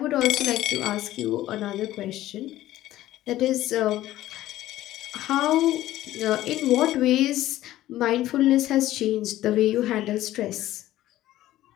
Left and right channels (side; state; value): right; quieter; 14.7 dB